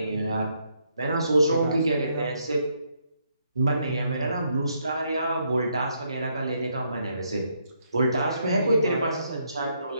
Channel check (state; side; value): inverted; both; correlation -0.75